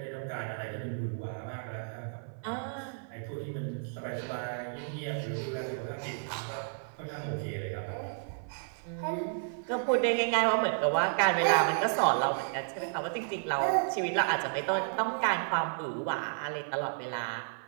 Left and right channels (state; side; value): silent; left; 56 dB below the other